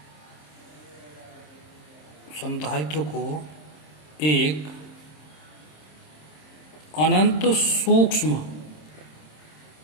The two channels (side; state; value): right; late; 26 ms